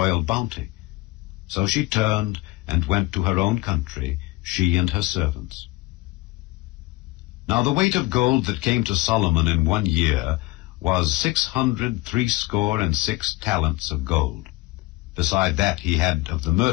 bounty. So she turned and went to her own country, she and her servants. Now the weight of gold that came to Solomon in 1 year was 666 talents of gold. Beside that he had of the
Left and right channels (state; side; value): quieter; right; 21.4 dB